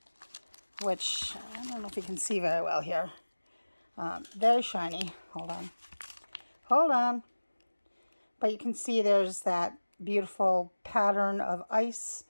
which I don't know if you can see very well here. Very shiny. Hold on. But you can see there's that beautiful pattern of ice,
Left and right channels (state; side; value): inverted; both; correlation -1.00